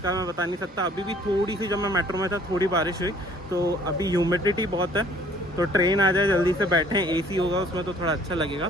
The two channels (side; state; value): both; normal; correlation 0.56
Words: मैं बता नहीं सकता। अभी भी थोड़ी सी, जब मैं मेट्रो में था, थोड़ी बारिश हुई। तो अभी ह्यूमिडिटी बहुत है। तो ट्रेन आ जाए, जल्दी से बैठें, AC होगा उसमें तो थोड़ा अच्छा